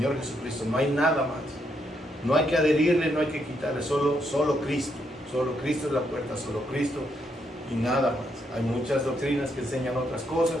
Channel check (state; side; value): normal; both; correlation 0.77